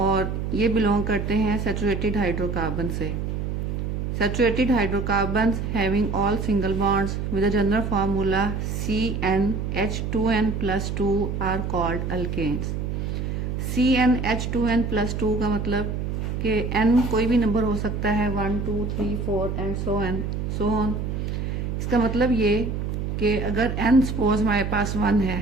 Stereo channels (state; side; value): noise; right; hum, 3 dB below the sound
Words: ये बिलोंग करते हैं सैचुरेटेड हाइड्रोकार्बन से। Saturated hydrocarbons having all single bonds with a general formula CnH2n plus 2 are called alkanes. CnH2n plus 2 का मतलब कि n कोई भी नंबर हो सकता है, 1 2 3 4 एंड सो ऑन। इसका मतलब ये कि अगर n सपोज हमारे पास 1 है,